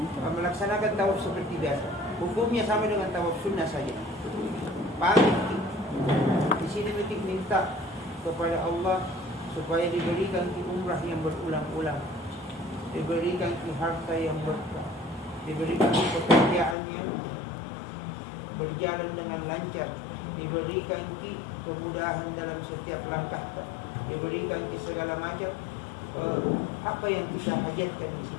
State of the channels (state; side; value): drops out; right; at 16.8 s